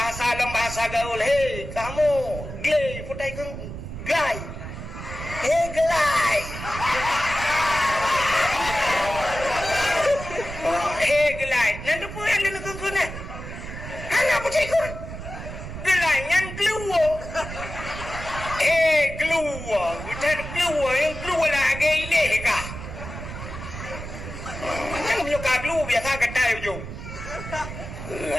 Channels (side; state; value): right; noise; rumble, 9 dB below the sound